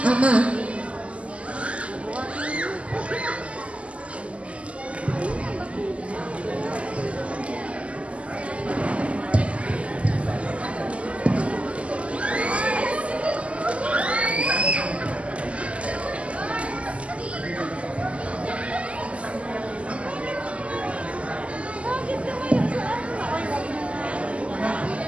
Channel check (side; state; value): left; late; 0.061 ms